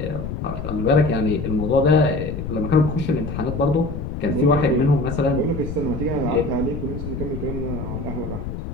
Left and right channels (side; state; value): left; noise; rumble, 6 dB below the sound